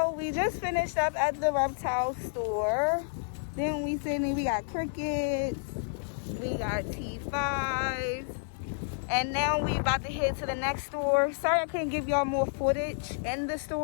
we just finished up at the reptile store. Then we got crickets, we got T5s, and now we about to head to the next store. Sorry I couldn't give y'all more footage in the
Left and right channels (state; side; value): silent; right; digital silence